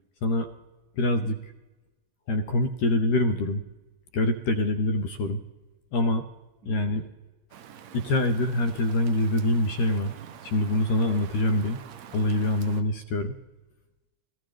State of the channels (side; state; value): right; late; 13 ms